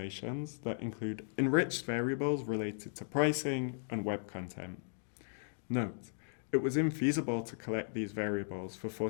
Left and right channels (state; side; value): silent; right; digital silence